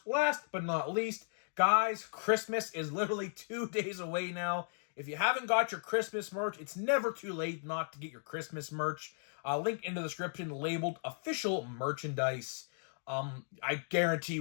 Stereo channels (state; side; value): silent; right; digital silence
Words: last but not least, guys, Christmas is literally 2 days away now. If you haven't got your Christmas merch, it's never too late not to get your Christmas merch. Link in the description labeled official merchandise. I guarantee